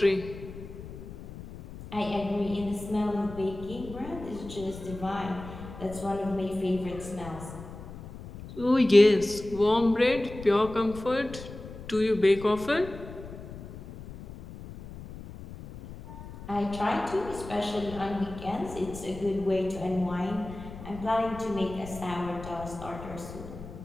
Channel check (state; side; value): noise; left; rumble, 13 dB below the sound